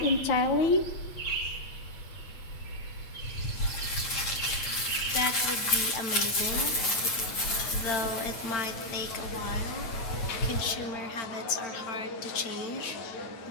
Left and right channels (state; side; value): late; right; 8.7 ms